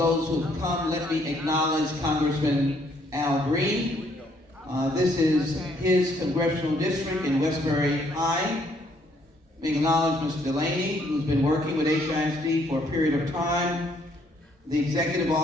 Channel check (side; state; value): both; normal; correlation 0.67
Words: who have come. Let me acknowledge Congressman Al Green. This is his congressional district in Westbury High. Let me acknowledge Mr. Delaney, who's been working with HISD for a period of time. The executive